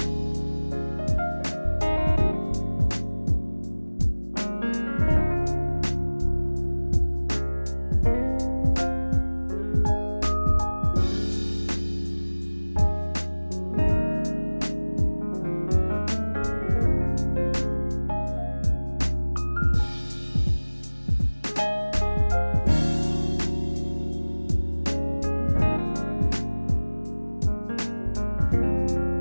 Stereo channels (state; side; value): inverted; both; correlation -1.00